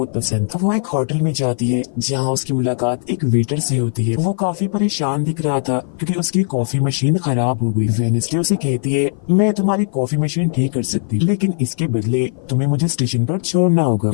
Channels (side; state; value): right; silent; 55 dB below the other